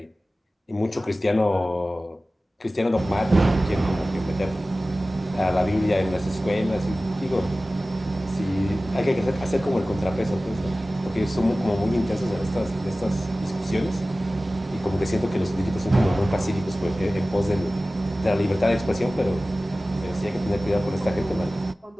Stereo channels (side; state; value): both; normal; correlation 0.96